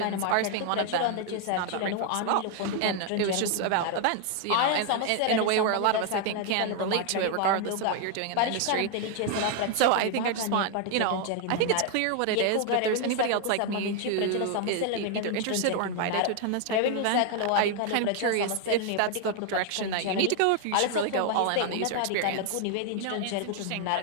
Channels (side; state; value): both; different; correlation 0.00